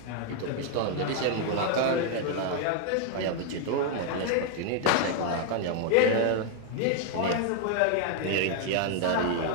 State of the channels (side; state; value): both; different; correlation 0.00